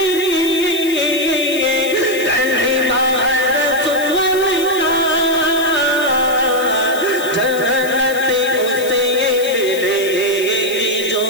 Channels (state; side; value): noise; left; hiss, 13 dB below the sound